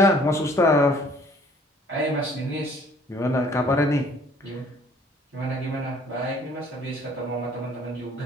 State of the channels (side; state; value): both; normal; correlation 0.57